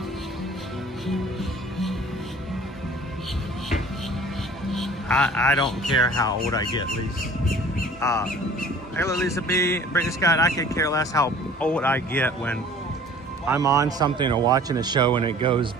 I don't care how old I get, Lisa. Hello, Lisa B. Brittany Scott, I could care less how old I get when I'm on something or watching a show and it goes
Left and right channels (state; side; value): normal; both; correlation 0.48